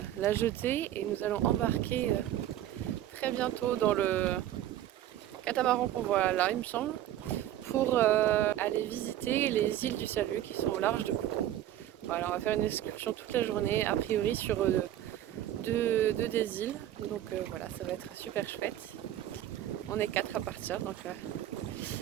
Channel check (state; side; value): quieter; left; 12.5 dB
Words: la jetée, et nous allons embarquer très bientôt dans le catamaran qu'on voit là, il me semble, pour aller visiter les îles du Salut qui sont au large de Kourou. Voilà, on va faire une excursion toute la journée, a priori sur deux des îles. Donc voilà, ça va être super chouette. On est 4 à partir, donc